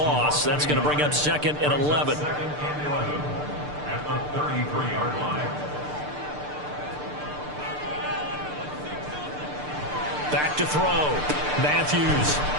That's going to bring up 2nd and 11. At the 33-yard line. Back to throw. Matthews.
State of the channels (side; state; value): left; late; 6.7 ms